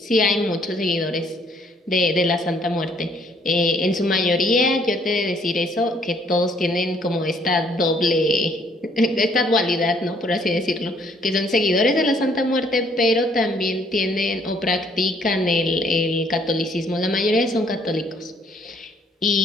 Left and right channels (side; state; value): both; normal; correlation 0.64